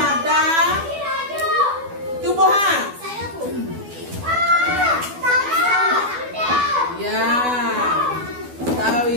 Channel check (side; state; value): left; late; 12 ms